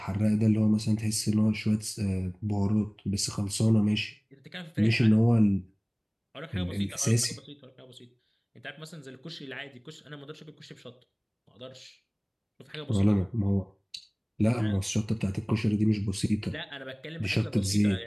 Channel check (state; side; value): identical; both; correlation 1.00